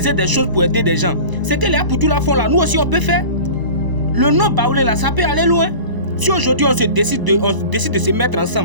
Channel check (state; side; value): late; left; 1.0 ms